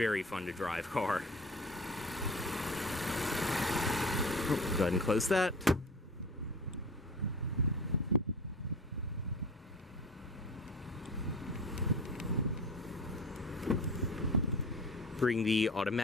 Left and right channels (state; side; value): normal; both; correlation 0.37